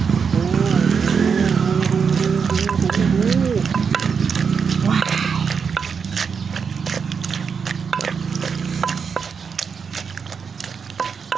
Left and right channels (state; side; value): quieter; left; 6.1 dB